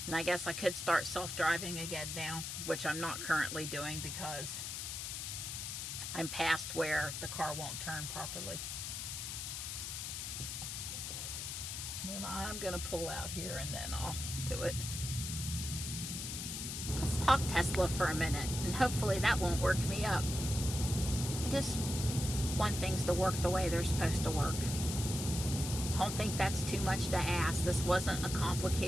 And I guess I could start self-driving again now, which I'm not currently doing because I'm past where the car won't turn properly. And I'm gonna pull out here and then I'll do it. Let's talk Tesla for a minute, and hopefully that won't work me up. I just want things to work the way they're supposed to work. Don't think that's too much to ask. This wasn't a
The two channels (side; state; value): left; noise; hiss, 5 dB below the sound